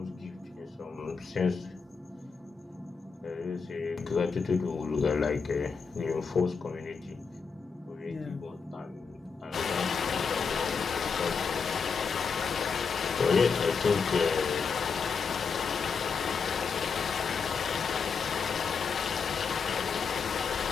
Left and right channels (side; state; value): right; quieter; 5.5 dB